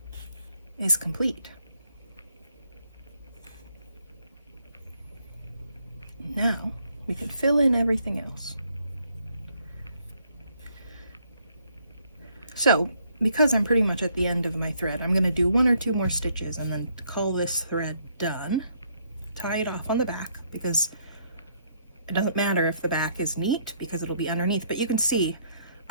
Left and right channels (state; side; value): inverted; both; correlation -0.70